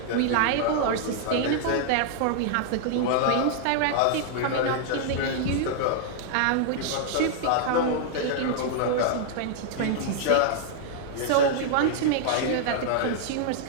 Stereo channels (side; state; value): both; different; correlation -0.01